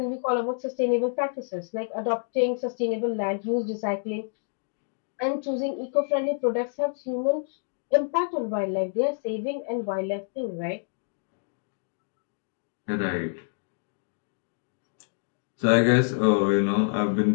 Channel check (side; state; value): right; silent; digital silence